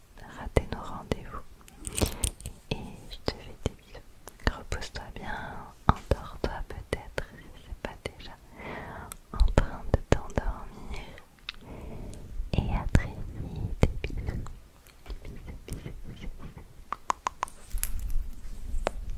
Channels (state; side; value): identical; both; correlation 1.00